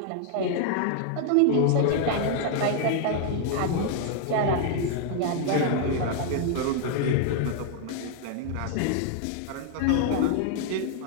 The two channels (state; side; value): different; both; correlation 0.00